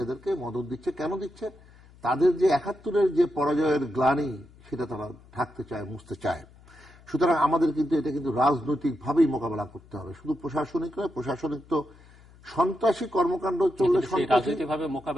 এদেরকে মদদ দিচ্ছে। কেন দিচ্ছে? তাদের যে 71-এর যে পরাজয়ের গ্লানি সেটা তারা ঢাকতে চায়, মুছতে চায়। সুতরাং আমাদের কিন্তু এটা কিন্তু রাজনৈতিকভাবেই মোকাবেলা করতে হবে, শুধু প্রশাসনিক নয়। প্রশাসনিক তো সন্ত্রাসী কর্মকাণ্ড চললে রাজনৈতিকভাবে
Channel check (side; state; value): left; noise; hum, 24 dB below the sound